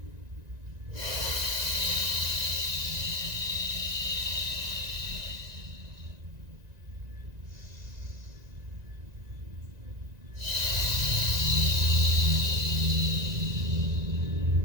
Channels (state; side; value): late; left; 1.9 ms